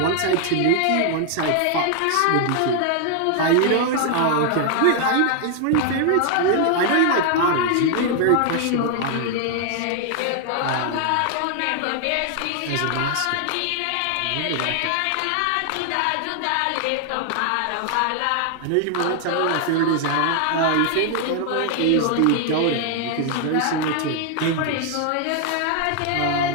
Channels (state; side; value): different; both; correlation 0.00